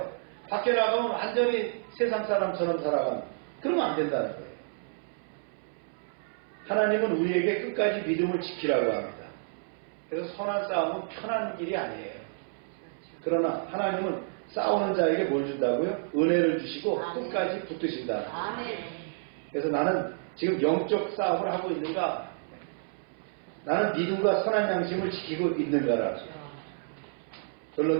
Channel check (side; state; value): left; silent; 58 dB below the other